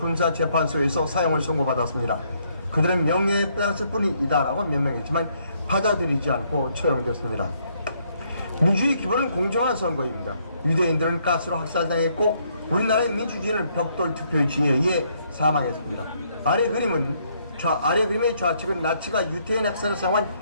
사용을 선고받았습니다. 그들은 명예에 따랐을 뿐이다라고 명명했지만 받아들이지 않고 처형됐습니다. 민주주의 기본은 공정한 선거입니다. 유대인들은 가스로 학살당했고 우리나라의 민주주의는 벽돌 투표지에 의해 사망했습니다. 아래 그림의 좌측은 나치가 유태인 학살을 사용한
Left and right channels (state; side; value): inverted; both; correlation -0.71